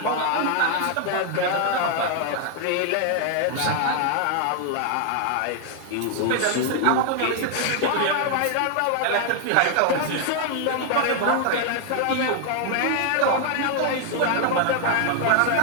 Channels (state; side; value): different; both; correlation 0.00